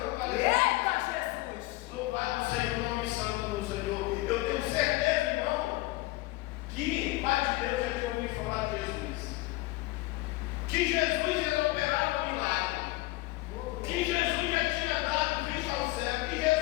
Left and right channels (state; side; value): quieter; right; 20.0 dB